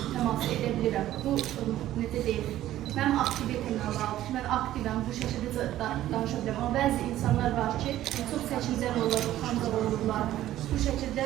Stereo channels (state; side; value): quieter; left; 13.6 dB